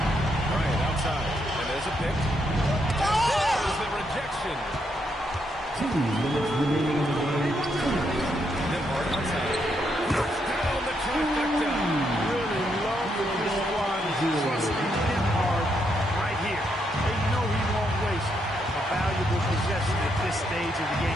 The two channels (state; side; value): normal; both; correlation 0.78